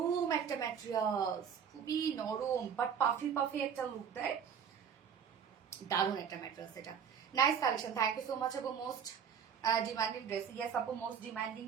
একটা ম্যাটেরিয়ালস, খুবই নরম বাট পাফি পাফি একটা লুক দেয়, দারুণ একটা ম্যাটেরিয়ালস। এটা nice collection, thank you so much আপু। মোস্ট ডিমান্ডিং ড্রেস, ইয়েস আপু মোস্ট ডিমান্ডিং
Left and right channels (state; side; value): quieter; left; 7.5 dB